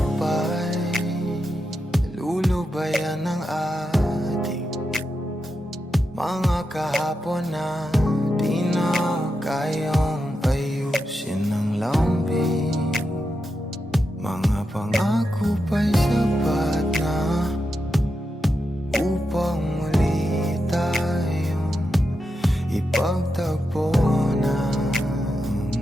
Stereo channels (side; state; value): both; normal; correlation 0.87